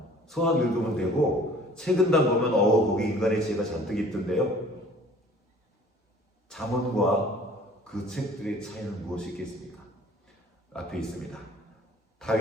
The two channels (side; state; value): both; normal; correlation 0.51